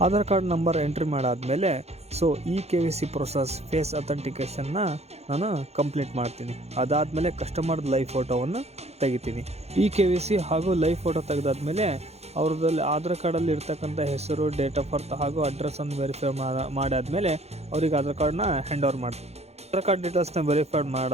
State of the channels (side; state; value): left; late; 0.31 ms